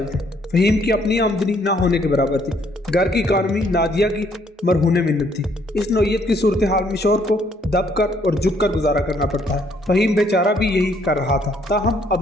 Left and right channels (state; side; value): normal; both; correlation 0.67